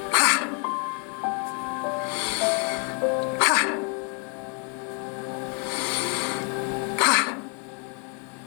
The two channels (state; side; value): quieter; right; 38.5 dB